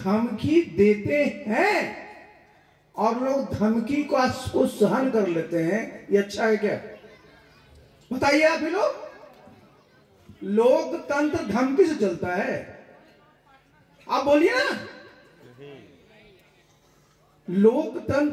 देते हैं और लोग धमकी को सहन कर लेते हैं। ये अच्छा है क्या? बताइए आप ही लोग। लोकतंत्र धमकी से चलता है? आप बोलिए ना।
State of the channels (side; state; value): both; identical; correlation 1.00